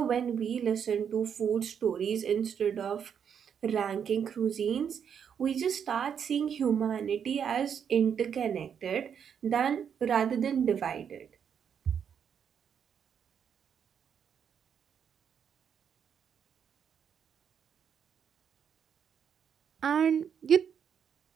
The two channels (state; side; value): quieter; left; 7.8 dB